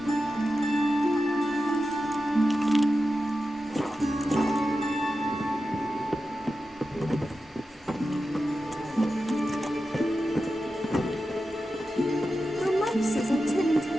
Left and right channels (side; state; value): both; normal; correlation 0.91